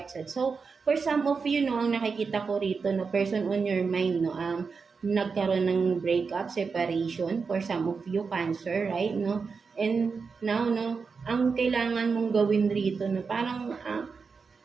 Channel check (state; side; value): quieter; left; 5.1 dB